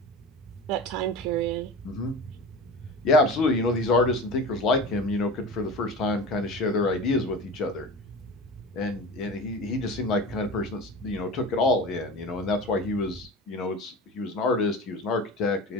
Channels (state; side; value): normal; both; correlation 0.33